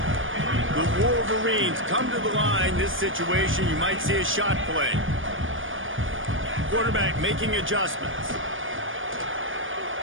The Wolverines come to the line. This situation, you might see a shot play. Quarterback making adjustments.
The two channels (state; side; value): late; left; 0.58 ms